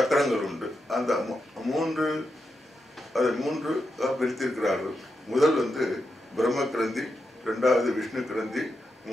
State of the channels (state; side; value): normal; both; correlation 0.86